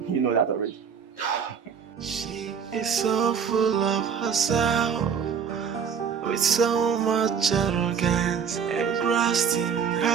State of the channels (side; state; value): left; quieter; 7.0 dB